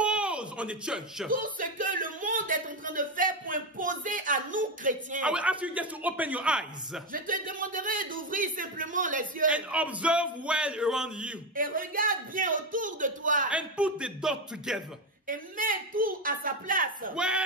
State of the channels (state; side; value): normal; both; correlation 0.11